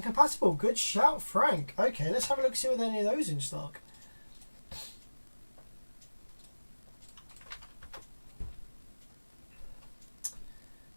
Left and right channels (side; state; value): both; inverted; correlation -1.00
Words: compatible. Good shout, Frank. Okay, let's have a look. See whether any of those in stock.